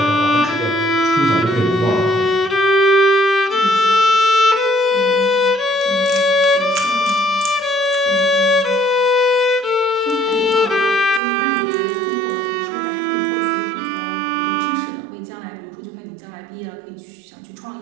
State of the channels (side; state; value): left; drops out; at 11.2 s